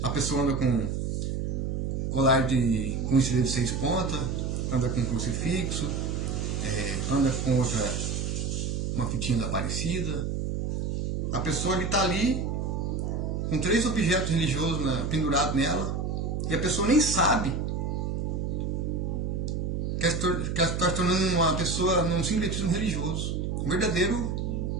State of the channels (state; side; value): noise; right; hum, 1 dB below the sound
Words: A pessoa anda com colar com estrela de 6 pontas, anda com crucifixo, anda com uma fitinha da Aparecida. A pessoa está ali com 3 objetos religiosos pendurados nela e a pessoa nem sabe que está se tornando uma pessoa num sincretismo religioso, um verdadeiro